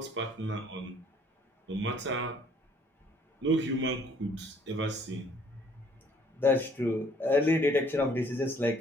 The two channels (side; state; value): both; normal; correlation 0.60